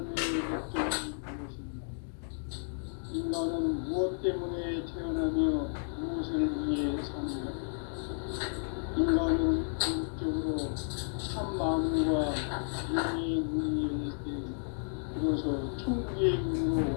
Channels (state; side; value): silent; right; digital silence